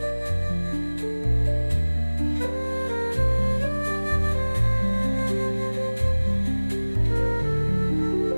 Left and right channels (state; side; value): inverted; both; correlation -1.00